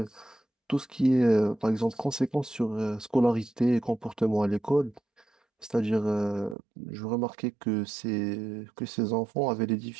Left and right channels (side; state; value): left; drops out; at 6.6 s